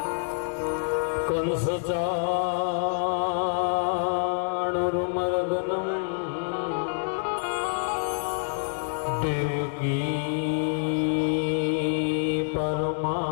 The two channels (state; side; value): silent; right; digital silence